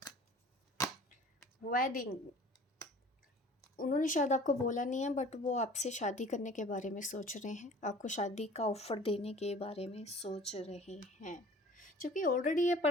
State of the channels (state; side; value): normal; both; correlation 0.47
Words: वेडिंग, उन्होंने शायद आपको बोला नहीं है बट वो आपसे शादी करने के बारे में सोच रहे हैं, आपको शादी का ऑफ़र देने के बारे में सोच रहे हैं। क्योंकि ऑलरेडी ये